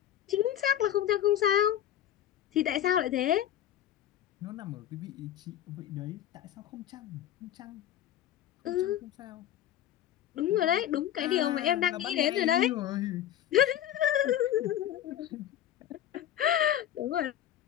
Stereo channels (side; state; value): right; quieter; 11.3 dB